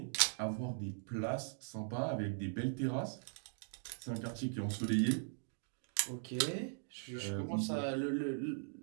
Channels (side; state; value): left; silent; digital silence